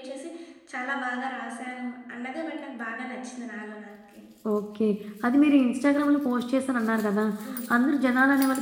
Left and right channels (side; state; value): both; identical; correlation 1.00